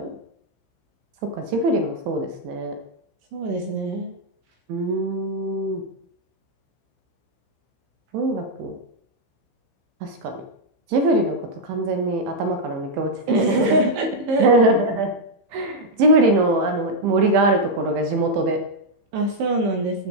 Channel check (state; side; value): late; left; 15 ms